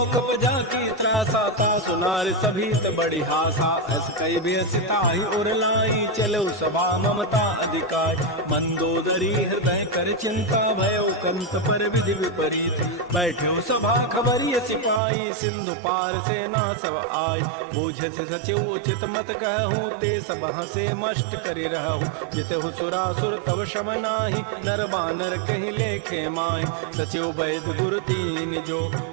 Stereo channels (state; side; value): drops out; left; at 15.0 s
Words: बजा की त्रासा ता सुनार सभी त बड़ी हासा अस कई बेसिता ही उर लाई चलो सभा ममता अधिकार मंदोदरी हृदय कर चिंता भयो कंत पर विधि विपरीत बैठो सभा खबरिय सिपाही सिंधु पार से ना सब आय मुझे से सचिव उचित मत कहूँ ते सभा से मष्ट करी रहूँ जित सुरासुर तब शम नाही नर बानर कहीं लेके माय सचिव वैद गुरु तीन जो